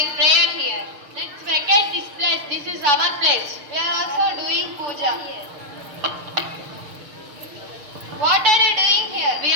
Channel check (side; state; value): left; late; 6.6 ms